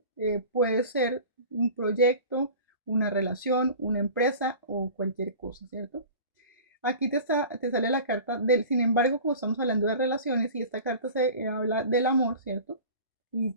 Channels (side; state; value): both; inverted; correlation -0.39